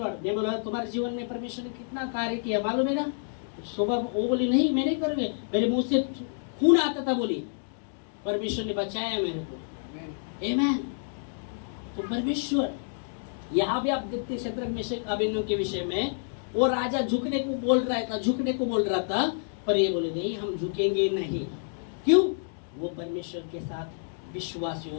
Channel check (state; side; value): silent; right; digital silence